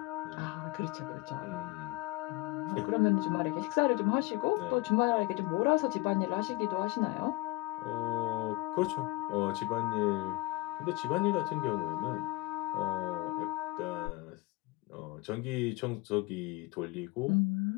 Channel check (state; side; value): quieter; right; 20.8 dB